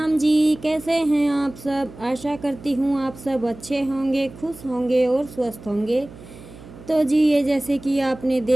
जी। कैसे हैं आप सब? आशा करती हूँ आप सब अच्छे होंगे, खुश होंगे और स्वस्थ होंगे। तो जी, ये जैसे कि आपने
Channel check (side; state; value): right; noise; hum, 18 dB below the sound